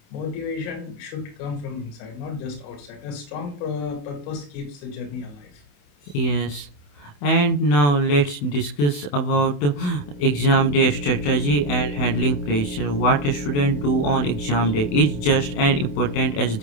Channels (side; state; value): right; late; 28 ms